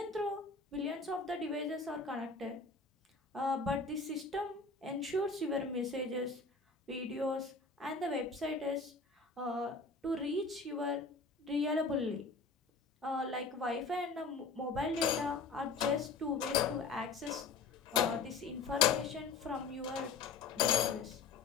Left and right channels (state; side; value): quieter; right; 4.4 dB